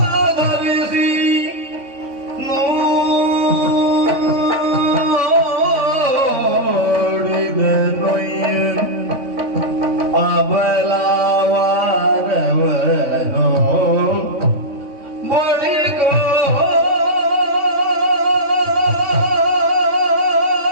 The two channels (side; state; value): left; late; 3.5 ms